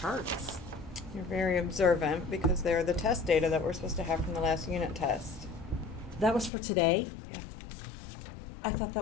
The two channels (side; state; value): right; drops out; at 6.5 s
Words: You're very observant because they're the test data that we're supposed to have from the last unit test. That was for today? Yeah. I thought